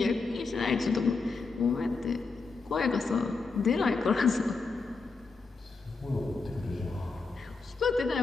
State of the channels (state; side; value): quieter; right; 4.2 dB